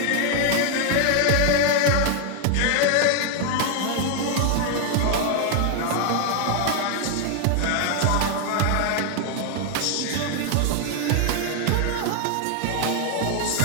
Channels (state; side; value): different; both; correlation 0.00